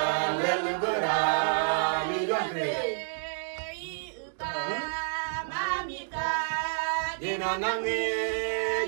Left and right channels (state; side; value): silent; left; digital silence